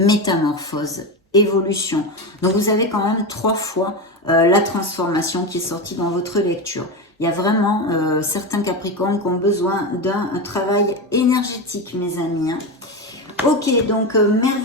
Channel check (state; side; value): normal; both; correlation 0.18